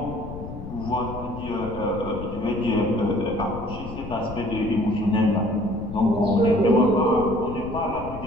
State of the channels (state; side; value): noise; left; rumble, 11 dB below the sound